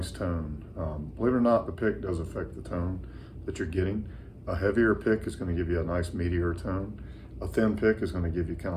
tone. Believe it or not, the pick does affect the tone that you're getting. A heavier pick is going to give you a nice meatier tone. A thin pick is going to give you kind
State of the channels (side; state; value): both; identical; correlation 1.00